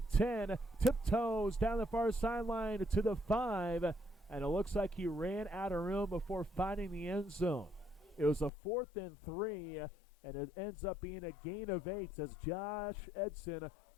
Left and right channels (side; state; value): right; drops out; at 8.5 s